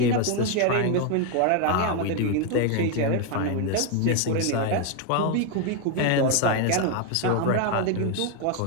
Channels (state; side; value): different; both; correlation 0.01